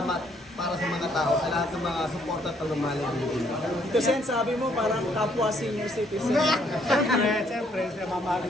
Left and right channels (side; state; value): both; normal; correlation 0.68